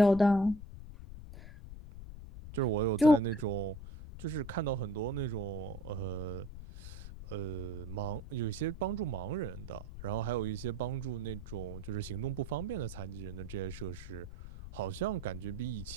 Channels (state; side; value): noise; left; rumble, 11 dB below the sound